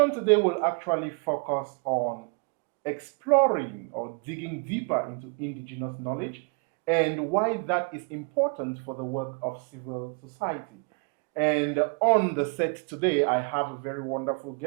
today will actually focus on exploring or digging deeper into indigenous knowledge and why that is important for the work of civil society. And on the set today, I have a very wonderful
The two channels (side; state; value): left; quieter; 37.2 dB